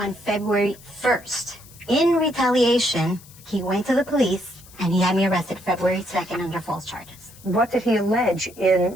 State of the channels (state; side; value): noise; left; hiss, 22 dB below the sound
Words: February 1st. In retaliation, he went to the police and he had me arrested February 2nd under false charges. What did he allege